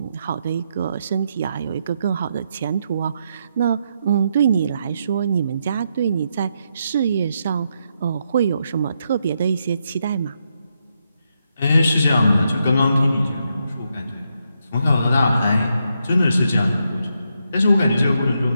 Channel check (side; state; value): both; inverted; correlation -0.81